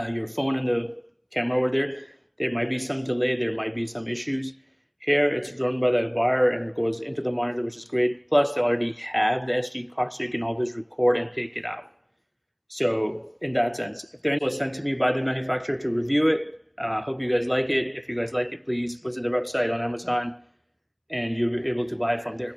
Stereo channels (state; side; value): identical; both; correlation 1.00